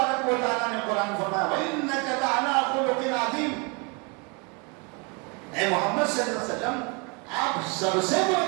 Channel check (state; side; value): quieter; left; 31.9 dB